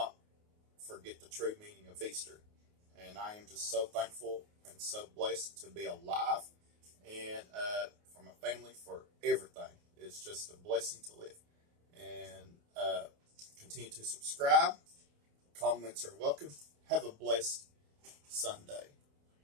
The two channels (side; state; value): left; late; 28 ms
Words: forget the true meaning of Easter. And I am just so thankful and so blessed to be alive, and for my family, for everything. It's just a blessing to live. And continue to subscribe. Comments are welcome. Have a blessed Sunday.